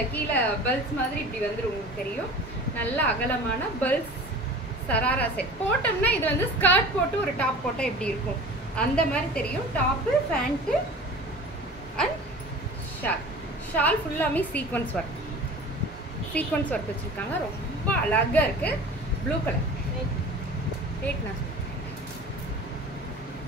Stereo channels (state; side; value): normal; both; correlation 0.40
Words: கீழே பல்ஸ் மாதிரி இப்படி வந்துடும், உங்களுக்கு தெரியும். நல்ல அகலமான பல்ஸ் சராரா செட். போட்டோம்னா இது வந்து ஸ்கர்ட் போட்டு ஒரு டாப் போட்டா எப்படி இருக்கும் அந்த மாதிரி தெரியும். டாப்பு பேண்ட் அண்ட் ஷால் ஃபுல்லாமே சீக்வன்ஸ் ஒர்க் வச்சிருக்காங்க. ரொம்ப அழகா இருக்கு. ப்ளூ கலர் ரேட் நான்